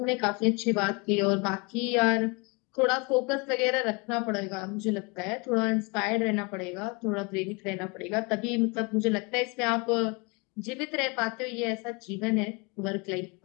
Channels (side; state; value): right; quieter; 29.8 dB